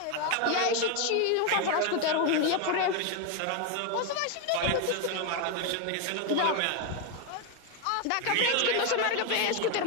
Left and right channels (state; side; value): different; both; correlation 0.01